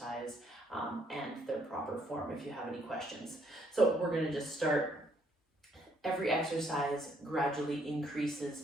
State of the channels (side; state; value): both; normal; correlation 0.69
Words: and their proper form if you have any questions. So we're going to just start. Every exercise gradually increases